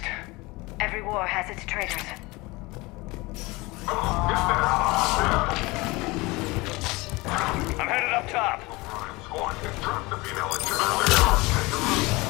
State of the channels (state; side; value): quieter; right; 23.1 dB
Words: Every war has its traitors. I'm headed up top. Squad, get trapped the female engine earlier.